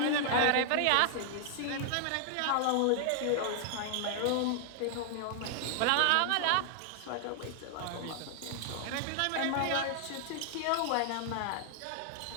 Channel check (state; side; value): different; both; correlation -0.01